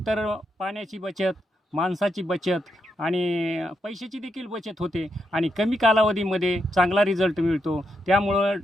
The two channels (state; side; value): normal; both; correlation 0.82